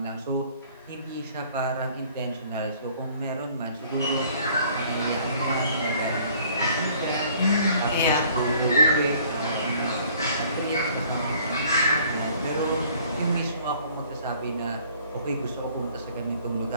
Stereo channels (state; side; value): inverted; both; correlation -0.57